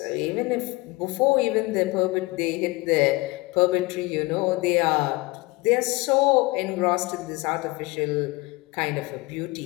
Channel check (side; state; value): right; quieter; 23.1 dB